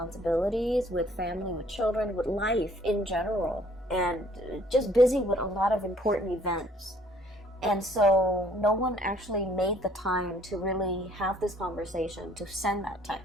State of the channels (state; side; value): normal; both; correlation 0.59